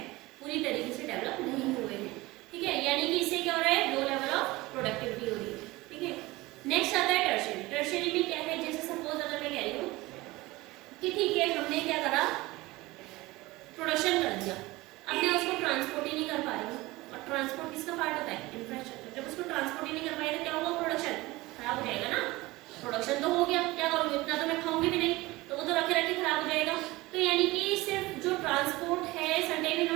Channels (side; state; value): left; quieter; 20.4 dB